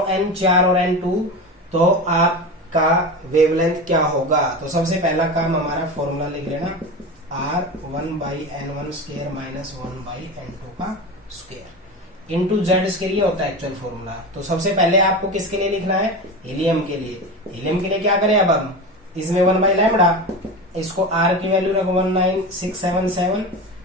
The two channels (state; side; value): normal; both; correlation 0.26